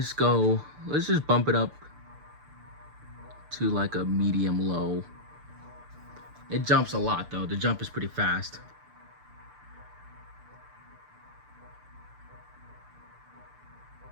just bump it up to like a medium low. It jumps a lot though. The jump is pretty fast.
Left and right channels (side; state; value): left; late; 6.8 ms